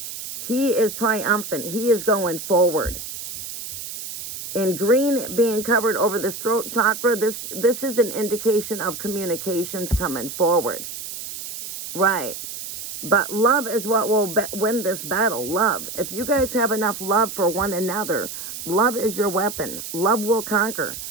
He is triumphant. He is going forward. In green being covered over this throat chakra, this is an indication of communications coming forward. Right. But love is what will win this battle. Love. If you guys have enough love for one another, love is your weapon. Love will conquer.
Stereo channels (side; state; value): right; noise; hiss, 9 dB below the sound